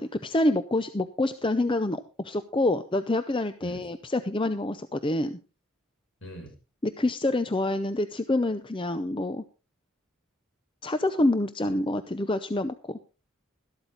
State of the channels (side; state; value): both; normal; correlation 0.74